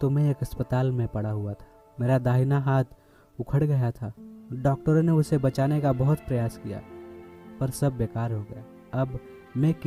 मैं एक अस्पताल में पड़ा हुआ था। मेरा दाहिना हाथ उखड़ गया था। डॉक्टरों ने उसे बचाने का बहुत प्रयास किया पर सब बेकार हो गया। अब मैं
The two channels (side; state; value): both; identical; correlation 1.00